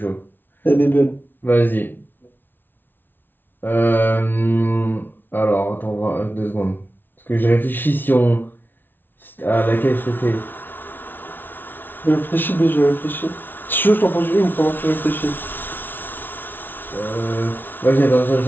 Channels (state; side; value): late; right; 0.097 ms